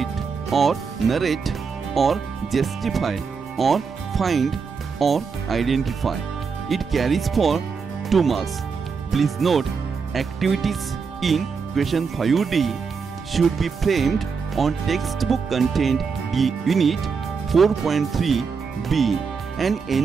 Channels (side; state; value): left; quieter; 5.5 dB